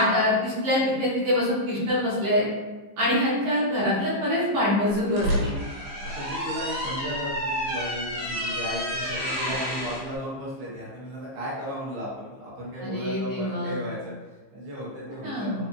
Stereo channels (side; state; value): left; late; 15 ms